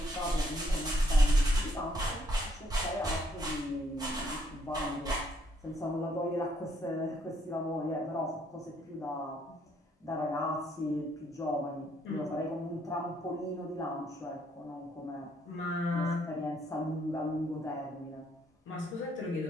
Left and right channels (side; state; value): both; normal; correlation 0.70